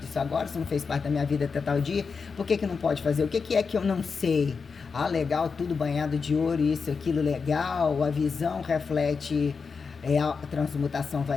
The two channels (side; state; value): right; quieter; 5.2 dB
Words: disso agora, você não fez parte da minha vida até tal dia, por que não pode fazer? O que é que eu não sei? Ah, legal, tudo banhado de ouro, isso, aquilo, legal, a visão reflete... a transmutação